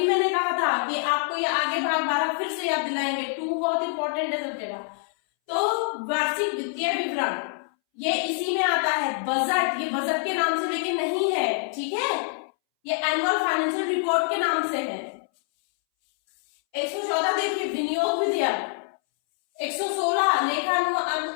मैंने कहा था कि आपको ये आगे भाग 12 फिर से याद दिलाएंगे, 2 बहुत इंपॉर्टेंट है सब जगह। तो वार्षिक वित्तीय विवरण ये इसी में आता है। बजट, ये बजट के नाम से लेकिन नहीं है, ठीक है, ये एनुअल फाइनेंशियल रिपोर्ट के नाम से है। 114 देखिए विनियोग विधेयक, 116 लेखानुवाद,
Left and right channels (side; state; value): right; silent; 61 dB below the other